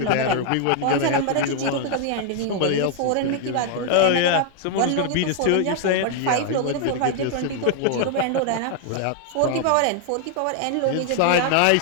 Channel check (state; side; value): different; both; correlation 0.00